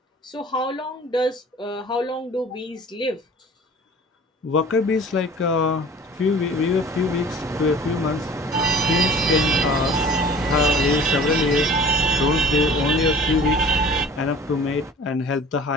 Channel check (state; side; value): normal; both; correlation 0.46